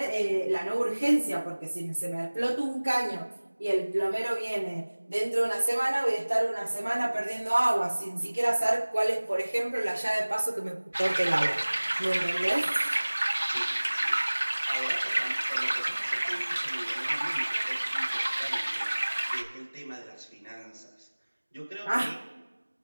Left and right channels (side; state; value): both; inverted; correlation -1.00